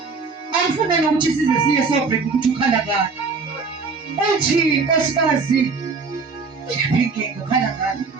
Angifuna nokuthi size siye sobheka ukuthi ukhala ngani. Uthi nkosikazi inkinga ukhala ngani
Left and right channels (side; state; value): left; quieter; 4.6 dB